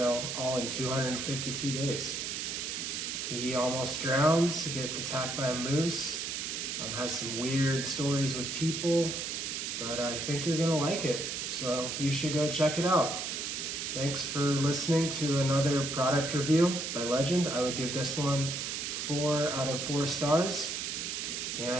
all in 252 days. He almost drowns, he gets attacked by a moose, has some weird stories with people, but I think you're gonna like it, so you should go check it out. Thanks for listening to another product review by Legend. I would give this one 4 out of 4 stars,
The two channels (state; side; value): noise; right; hiss, 3 dB below the sound